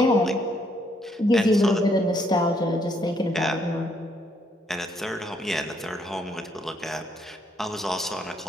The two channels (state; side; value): normal; both; correlation 0.71